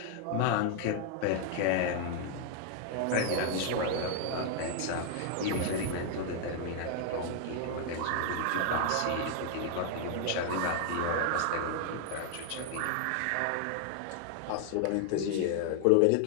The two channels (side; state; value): both; different; correlation 0.00